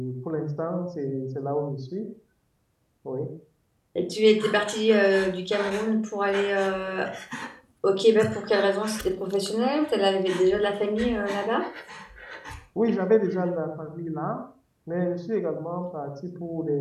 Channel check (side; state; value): both; identical; correlation 1.00